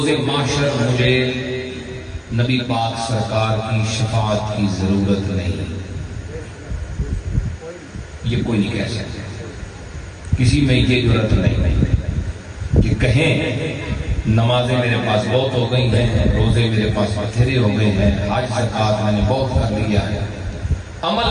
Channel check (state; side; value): identical; both; correlation 1.00